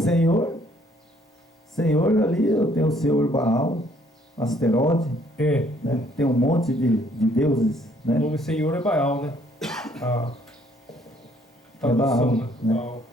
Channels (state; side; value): normal; both; correlation 0.64